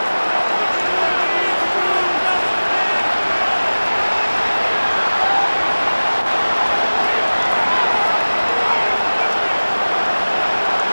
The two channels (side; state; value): both; inverted; correlation -1.00